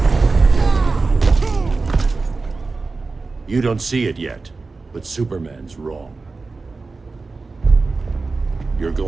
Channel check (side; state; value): left; quieter; 3.9 dB